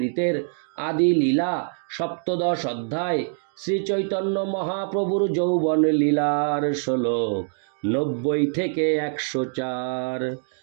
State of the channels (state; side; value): silent; left; 62 dB below the other